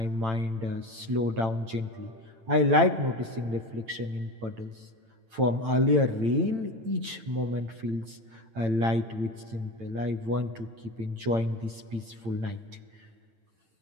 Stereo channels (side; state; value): left; late; 8.9 ms